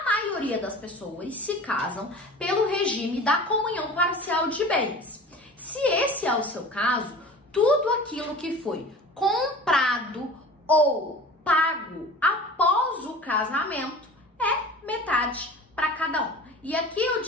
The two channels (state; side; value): normal; both; correlation 0.39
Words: maioria das pessoas se casam pelo regime da comunhão parcial de bens. Se esse é o seu caso, tudo aquilo que foi comprado ou pago após o casamento é metade para cada um. E aqui eu